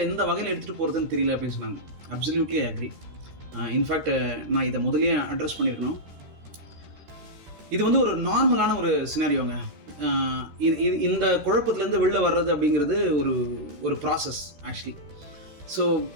எந்த வகையில் எடுத்துகிட்டு போகிறதுன்னு தெரியல அப்படின்னு சொன்னாங்க. Absolutely agri. இன்ஃபேக்ட் நான் இதை முதல்லயே அட்ரஸ் பண்ணியிருக்கணும். இது வந்து ஒரு நார்மலான ஒரு சினாரியோங்க. இந்த குழப்பத்திலேருந்து வெளில வர்றது அப்படிங்கிறது ஒரு ப்ராசஸ் ஆக்சுவலி. ஸோ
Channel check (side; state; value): left; late; 13 ms